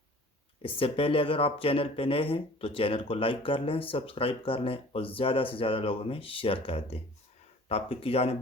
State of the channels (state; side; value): normal; both; correlation 0.48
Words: इससे पहले अगर आप चैनल पे नए हैं तो चैनल को लाइक कर लें, सब्सक्राइब कर लें और ज़्यादा से ज़्यादा लोगों में शेयर कर दें। टॉपिक की जाने